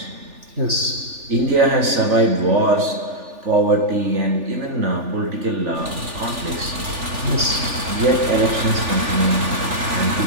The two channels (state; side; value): late; left; 3.4 ms